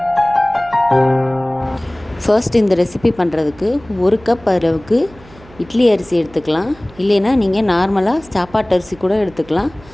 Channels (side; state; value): right; noise; hum, 23 dB below the sound